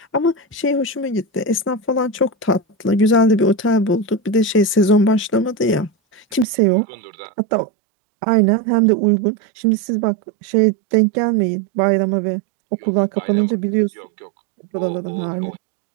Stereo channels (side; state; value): left; drops out; at 6.5 s